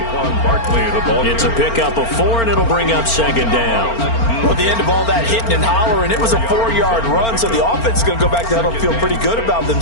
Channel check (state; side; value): late; right; 4.4 ms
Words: Barkley, the ball. It's a pickup of 4, and it'll bring up 2nd down. Well, at the end of all that hitting and hollering, it was a 4-yard run, so the offense is going to go back to huddle, feel pretty good about